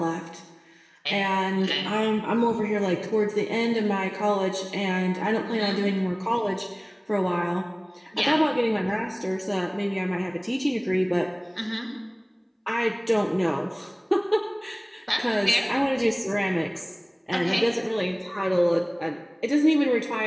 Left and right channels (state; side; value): identical; both; correlation 1.00